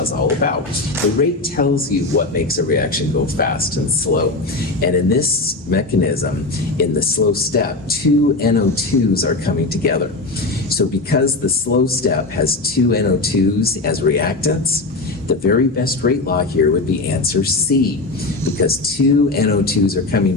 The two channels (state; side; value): quieter; right; 3.2 dB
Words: is all about. The rate tells you what makes a reaction go fast and slow. And in this mechanism, in the slow step, two NO2s are coming together. So because the slow step has two NO2s as reactants, the very best rate law here would be answer C, because two NO2s are coming